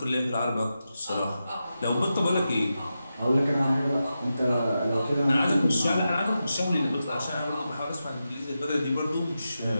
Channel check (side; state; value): both; inverted; correlation -0.90